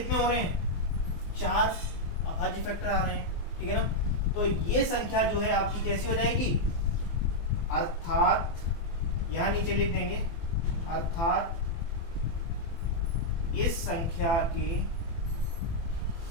हो रहे हैं? 4 अभाज्य फैक्टर आ रहे हैं। ठीक है ना, तो ये संख्या जो है आपकी कैसी हो जाएगी? अर्थात यहाँ नीचे लिख देंगे, अर्थात इस संख्या के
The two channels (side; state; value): right; late; 24 ms